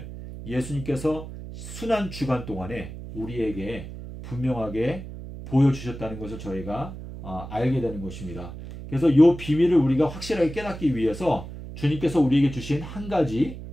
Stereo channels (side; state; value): right; noise; hum, 11 dB below the sound